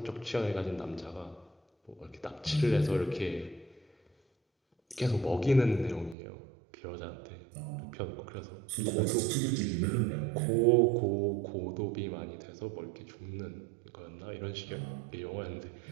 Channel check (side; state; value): left; drops out; at 6.2 s